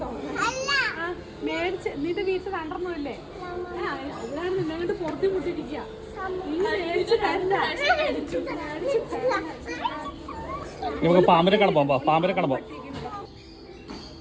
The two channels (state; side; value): identical; both; correlation 1.00